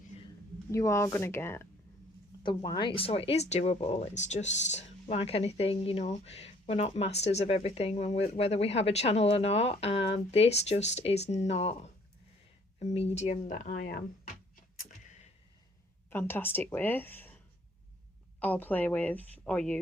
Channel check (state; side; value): normal; both; correlation 0.60